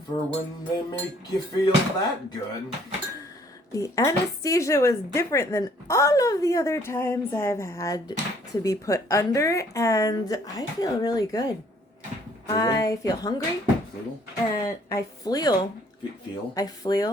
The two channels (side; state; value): both; normal; correlation 0.61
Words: for when they make you feel that good. The anesthesia was different than all of the other times I've had to be put under, and I feel really good. I feel hungry. Feel? And I feel. Feel? I